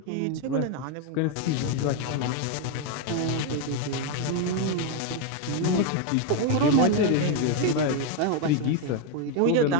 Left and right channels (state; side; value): different; both; correlation 0.02